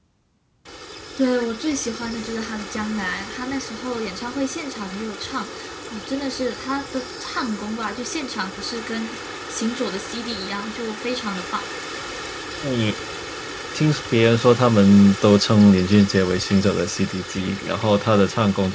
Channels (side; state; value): both; identical; correlation 1.00